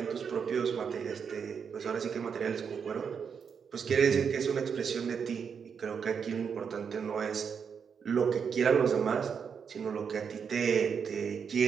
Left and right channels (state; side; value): quieter; left; 6.7 dB